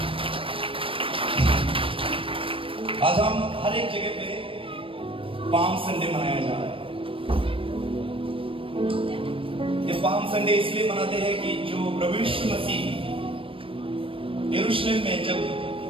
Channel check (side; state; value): left; late; 0.26 ms